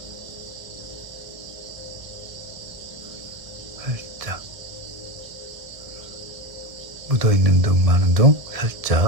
살짝. 묻어있는 둥, 많은 둥,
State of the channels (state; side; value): late; left; 1.4 ms